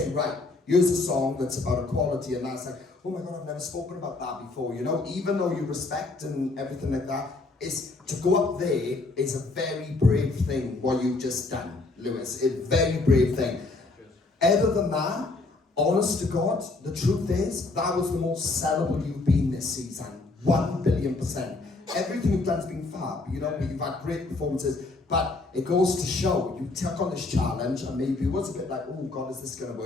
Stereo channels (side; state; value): right; quieter; 3.4 dB